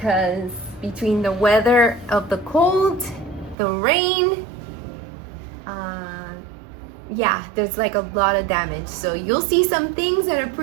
between the weather of the cold, the rain, yeah, there's like a lot of damage. So you'll see some things that are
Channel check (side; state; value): left; drops out; at 3.6 s